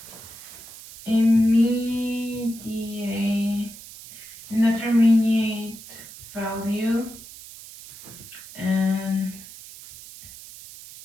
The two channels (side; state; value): right; noise; hiss, 16 dB below the sound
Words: indeterminate value and